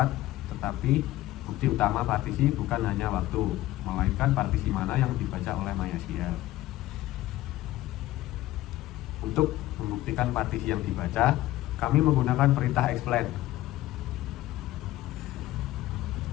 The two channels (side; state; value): right; quieter; 15.8 dB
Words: tetapi bukti utama partisi bukan hanya waktu, melainkan partisi mana yang dibaca oleh MySQL. Untuk membuktikan partisi yang dibaca, kami menggunakan perintah explain.